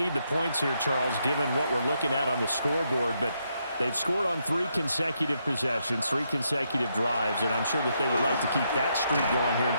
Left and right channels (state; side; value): inverted; both; correlation -0.78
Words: the points here, Charles, given what we're looking at on the scoreboard, but they've scored on 3 consecutive possessions, 3 consecutive drives, and I'm sure that they would like to keep that streak going here and